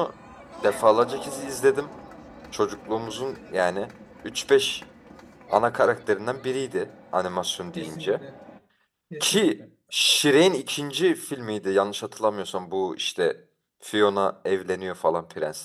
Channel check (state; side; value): identical; both; correlation 1.00